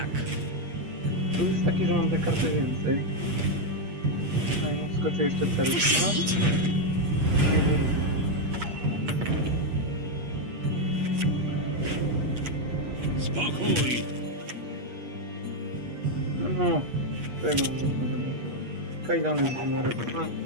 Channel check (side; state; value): left; late; 8.4 ms